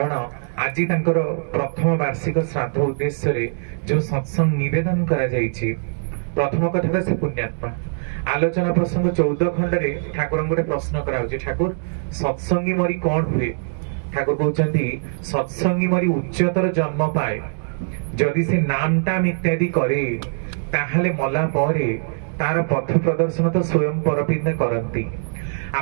आज प्रथम वार्षिक श्राद्ध उद्देश्य जो सत्संग निवेदन करा जायछि प्रथम कथा से पुण्यात्मा आलोचना प्रसंग 14 खंड रे ठाकुर गोटे प्रश्न कराउछि ठाकुर सत्संगी मरी कौन हुए ठाकुर कहउछन्ती सत्संगी मरी उच्चतर जन्म पाए जदि से नाम टाम इत्यादि करे ताहले मला परे तार पथ प्रदर्शन तो स्वयं परपिंद करंती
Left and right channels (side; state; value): left; silent; digital silence